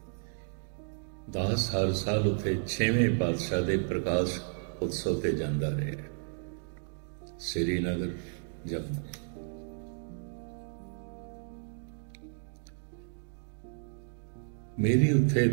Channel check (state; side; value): silent; left; digital silence